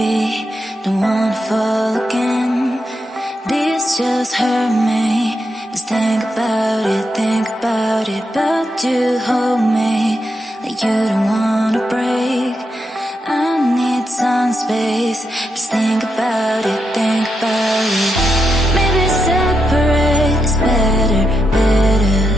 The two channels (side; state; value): both; normal; correlation 0.84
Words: don't wanna fall again. This just hurt me. Just think about it, but you hold me like you don't wanna break. I need some space. Just think about it, think about it. Maybe separate is better, better.